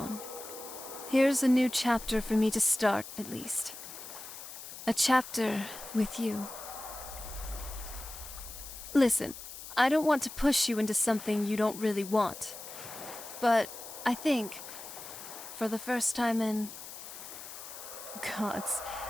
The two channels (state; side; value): noise; left; hiss, 12 dB below the sound